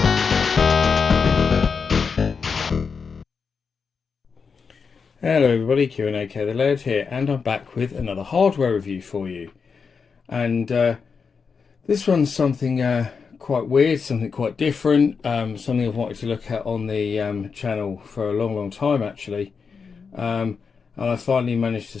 Hello everybody, Q&AK the Laird here, and I'm back with another hardware review for you. And this one's something quite weird, something quite different, something I've wanted to look at on the channel for a long time actually. And I finally managed to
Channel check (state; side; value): quieter; right; 5.6 dB